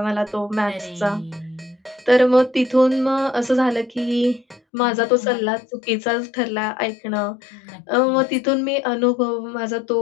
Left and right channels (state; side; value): drops out; right; at 4.6 s